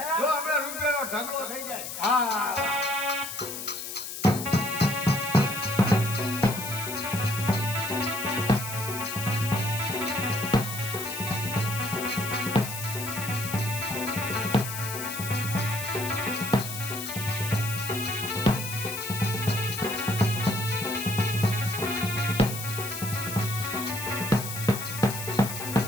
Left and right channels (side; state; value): left; noise; hiss, 7 dB below the sound